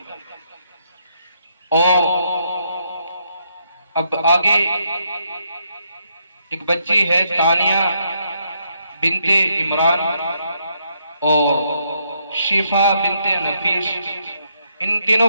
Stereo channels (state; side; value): inverted; both; correlation -0.75